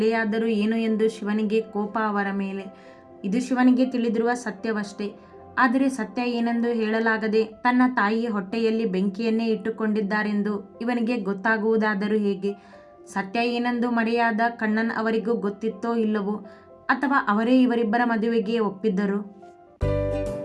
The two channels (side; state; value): both; identical; correlation 1.00